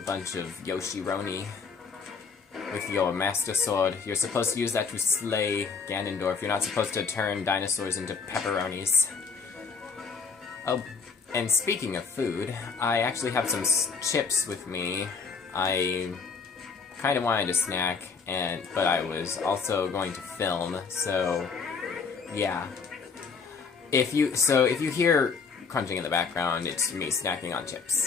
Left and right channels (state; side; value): quieter; right; 5.3 dB